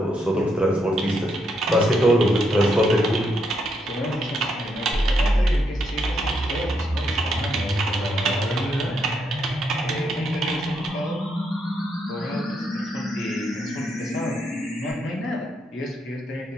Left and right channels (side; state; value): both; normal; correlation 0.78